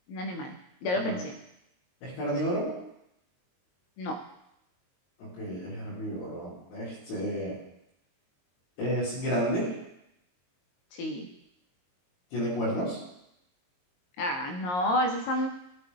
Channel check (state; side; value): late; right; 22 ms